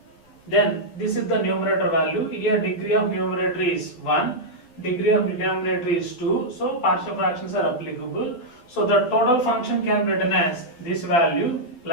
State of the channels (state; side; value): late; right; 12 ms